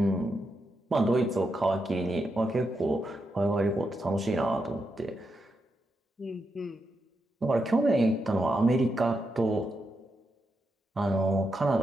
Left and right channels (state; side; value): normal; both; correlation 0.84